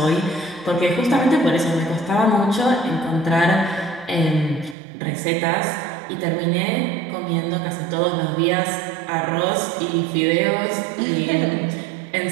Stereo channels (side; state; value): left; drops out; at 4.8 s